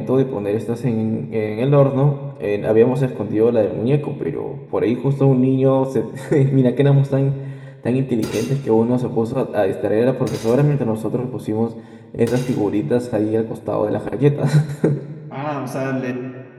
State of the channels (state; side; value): identical; both; correlation 1.00